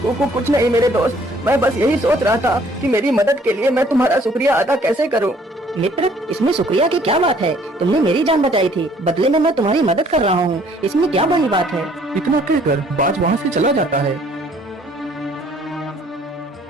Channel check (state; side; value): normal; both; correlation 0.60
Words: कुछ नहीं मेरे दोस्त, मैं बस यही सोच रहा था कि मेरी मदद के लिए मैं तुम्हारा शुक्रिया अदा कैसे करूं। मित्र, इसमें शुक्रिया की क्या बात है? तुमने मेरी जान बचाई थी, बदले में मैं तुम्हारी मदद कर रहा हूँ, इसमें क्या बड़ी बात है? इतना कहकर बाज वहाँ से चला जाता है।